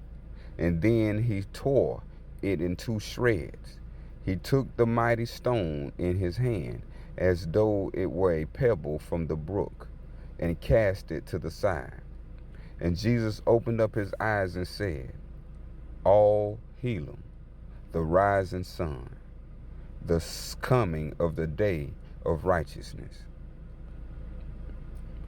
And then he tore it in two shreds. He took the mighty stone in his hand, as though it were a pebble from the brook, and cast it to the side. And Jesus opened up his eyes and said, All Helam, the rising sun, the coming of the day of righteousness.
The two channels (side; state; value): both; identical; correlation 1.00